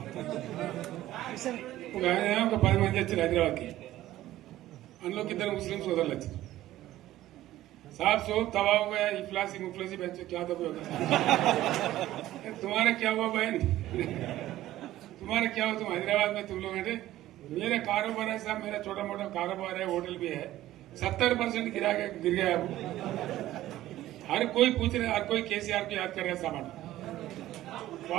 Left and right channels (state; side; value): quieter; left; 14.6 dB